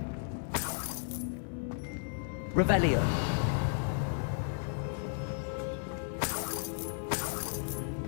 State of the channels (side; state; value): right; silent; digital silence